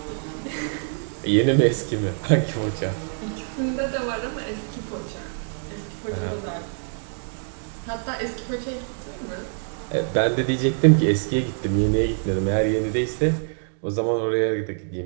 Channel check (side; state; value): left; silent; 58 dB below the other